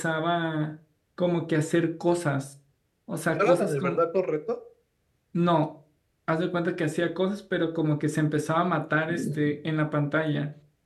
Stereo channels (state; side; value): identical; both; correlation 1.00